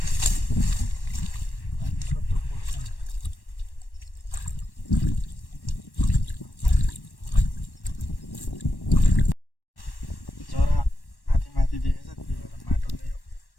जरा माथि माथि देखेछ, त्यही भएर माटोले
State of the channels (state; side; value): late; right; 1.1 ms